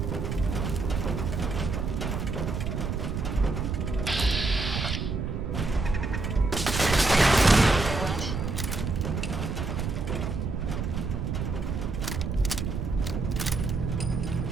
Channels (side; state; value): right; noise; rumble, 2 dB below the sound